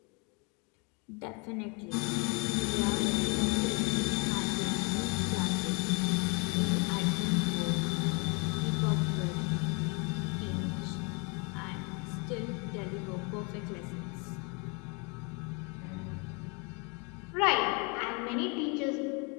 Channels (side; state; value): right; quieter; 32.7 dB